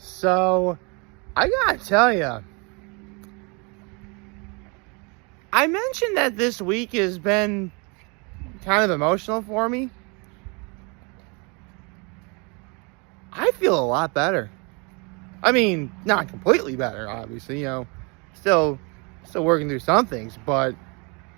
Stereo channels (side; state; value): left; quieter; 31.4 dB